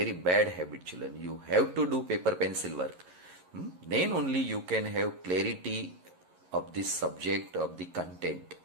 bad habit, children. You have to do paper pencil work. Then only you can have clarity of this subject, of the content.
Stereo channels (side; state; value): left; late; 11 ms